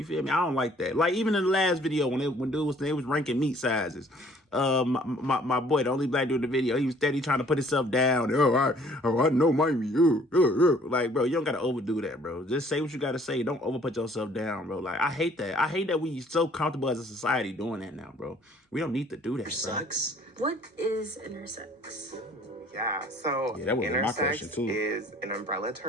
feel me? I don't like that. Like even in the last video when they was ranking meat sizes. My boy, the only black dude in the video, he was steady trying to put himself down. I know my meat. Like, bro, you don't gotta overdo that, bro. Just say what you gotta say. Don't overput yourself down, bro. Like, I hate that. I hate that we so comfortable as a society doing that now, bro. We don't need to do that, bro. Sucks. what is intersex? Yeah, so Yeah, that was my question, intersex too. is an umbrella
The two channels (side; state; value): both; normal; correlation 0.57